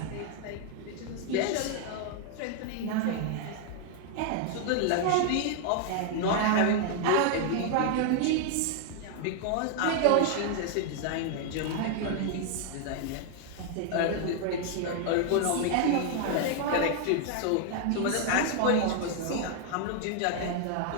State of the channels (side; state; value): both; different; correlation 0.00